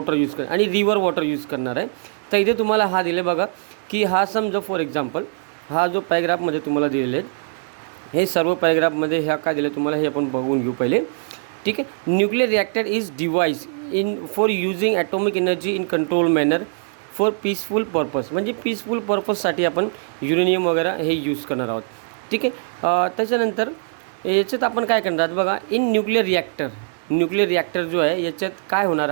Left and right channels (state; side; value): silent; left; 64 dB below the other